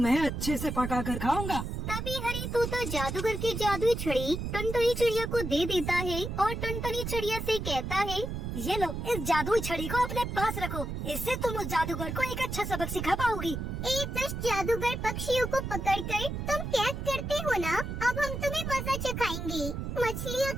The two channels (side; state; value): right; noise; rumble, 4 dB below the sound